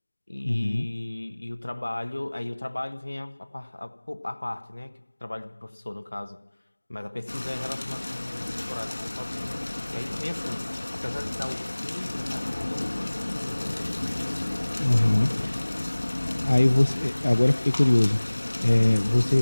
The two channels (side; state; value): both; inverted; correlation -1.00